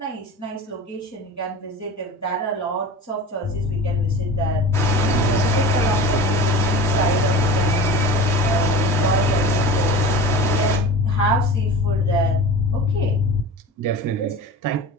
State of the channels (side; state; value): both; normal; correlation 0.35